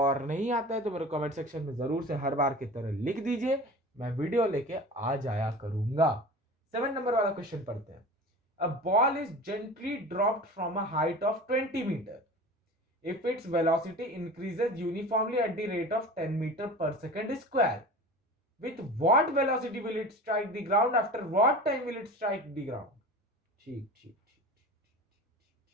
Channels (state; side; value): normal; both; correlation 0.36